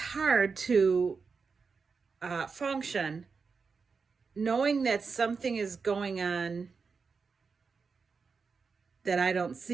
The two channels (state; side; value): quieter; left; 5.1 dB